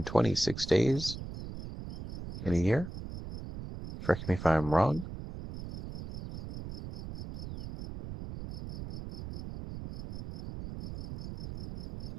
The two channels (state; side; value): noise; right; rumble, 8 dB below the sound